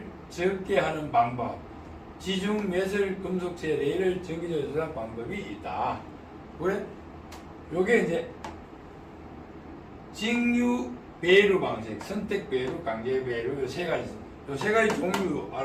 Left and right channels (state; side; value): identical; both; correlation 1.00